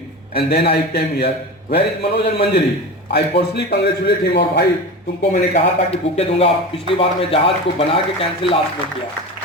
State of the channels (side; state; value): both; normal; correlation 0.28